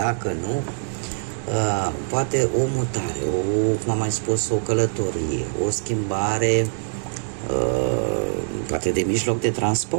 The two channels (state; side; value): silent; left; 63 dB below the other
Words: nu, poate o mutare, cum am mai spus, o călătorie, o schimbare, poate de mijloc de